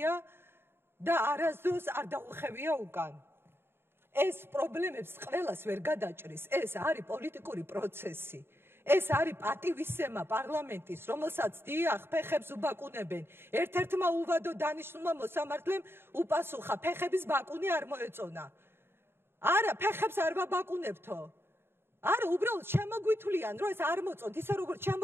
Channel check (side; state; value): left; late; 0.11 ms